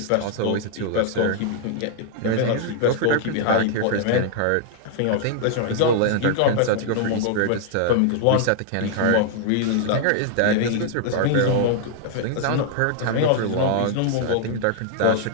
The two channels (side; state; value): both; different; correlation 0.00